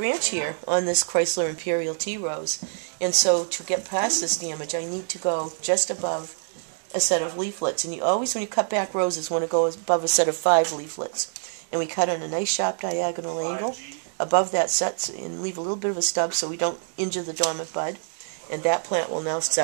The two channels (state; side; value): silent; left; digital silence